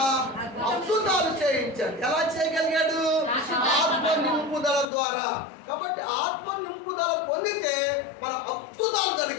అద్భుతాలు చేయించాడు. ఎలా చేయగలిగాడు? ఆత్మ నింపుదల ద్వారా. కాబట్టి ఆత్మ నింపుదల పొందితే మన అద్భుతాలు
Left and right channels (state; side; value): drops out; right; at 4.9 s